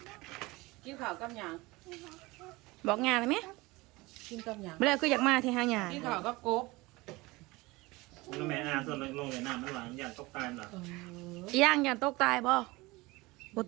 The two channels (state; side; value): quieter; left; 22.1 dB